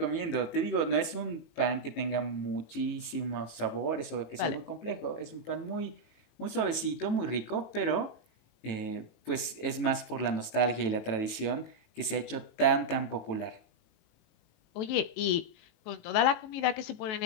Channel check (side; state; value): right; late; 18 ms